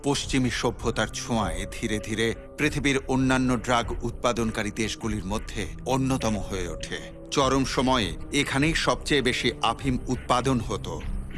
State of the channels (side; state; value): both; identical; correlation 1.00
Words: পশ্চিমী সভ্যতার ছোঁয়ায় ধীরে ধীরে পৃথিবীর অন্যান্য ড্রাগ উৎপাদনকারী দেশগুলির মধ্যে অন্যতম হয়ে ওঠে। চরম সময়ে এখানেই সবচেয়ে বেশি আফিম উৎপাদন হতো।